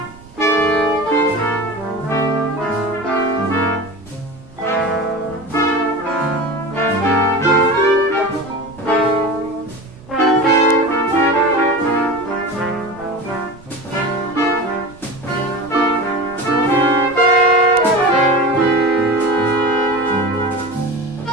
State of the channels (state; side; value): noise; right; rumble, 22 dB below the sound